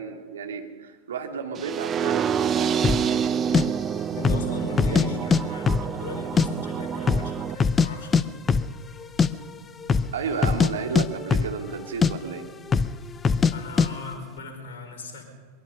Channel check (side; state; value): both; normal; correlation 0.65